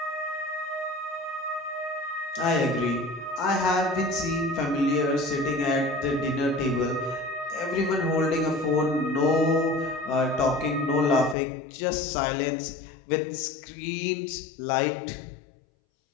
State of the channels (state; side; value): drops out; right; at 11.4 s